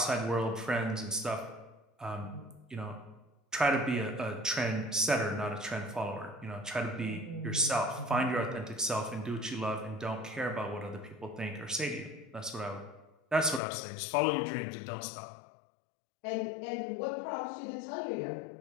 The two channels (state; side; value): drops out; right; at 13.6 s